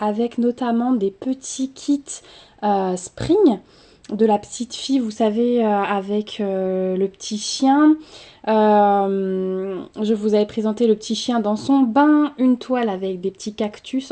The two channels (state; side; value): identical; both; correlation 1.00